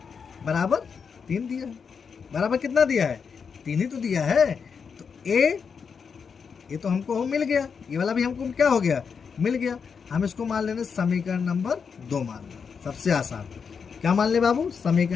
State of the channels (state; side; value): quieter; right; 6.1 dB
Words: बराबर 3 दिया है। बराबर कितना दिया है, 3 ही तो दिया है। तो ये तो हमको मिल गया, ये वाला भी हमको क्या हो गया, मिल गया। हम इसको मान लेंगे समीकरण नंबर 2 मान लें, सबसे आसान। क्या मान ले बाबू,